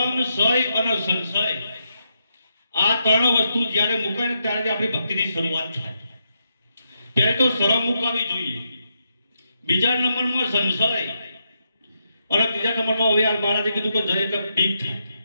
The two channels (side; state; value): both; inverted; correlation -0.81